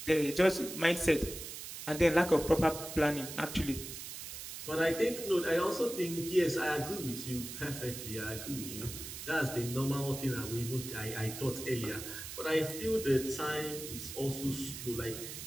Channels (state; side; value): noise; right; hiss, 9 dB below the sound